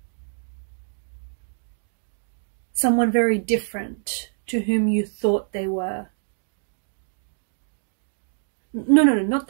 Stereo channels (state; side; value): silent; left; digital silence